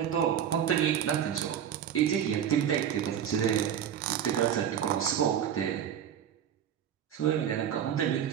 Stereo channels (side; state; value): left; quieter; 9.3 dB